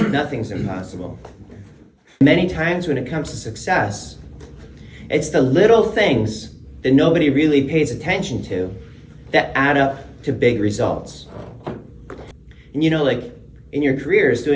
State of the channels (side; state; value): both; identical; correlation 1.00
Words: Nothing's impossible. Many times when it comes to success, it's the little things that nobody really pays attention to that add up to big results. And you know, like in your careers,